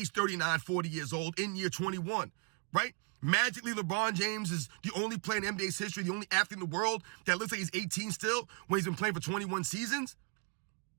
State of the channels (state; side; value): quieter; left; 34.8 dB